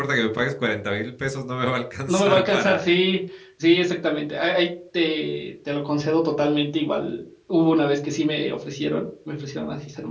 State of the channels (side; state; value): both; identical; correlation 1.00